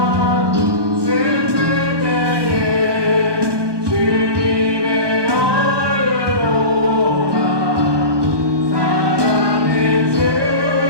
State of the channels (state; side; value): late; left; 1.2 ms